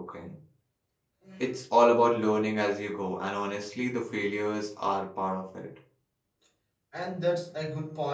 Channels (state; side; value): identical; both; correlation 1.00